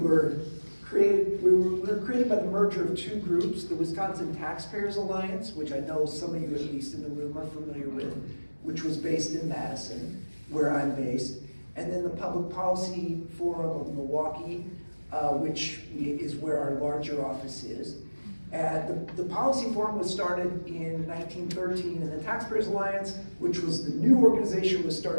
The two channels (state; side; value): inverted; both; correlation -1.00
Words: created by the merger of 2 groups, the Wisconsin Taxpayers Alliance, which I know some of you, at least in the room, are familiar with, which was based in Madison, where I'm based, and then the Public Policy Forum of Milwaukee, which is where our larger office is. The Policy Forum was started in 1913, and the Taxpayers Alliance, which was the new organization, was